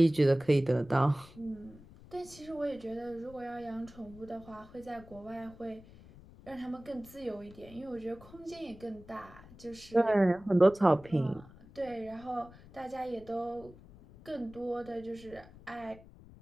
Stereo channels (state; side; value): noise; left; rumble, 21 dB below the sound